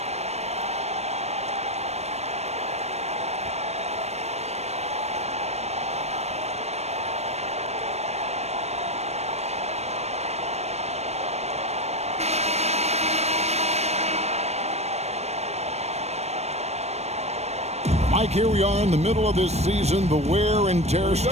Mike, here we are in the middle of this season, the wear and tear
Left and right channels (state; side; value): late; left; 0.31 ms